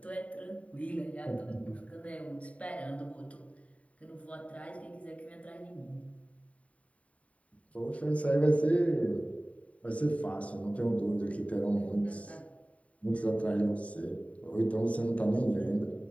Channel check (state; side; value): late; right; 0.067 ms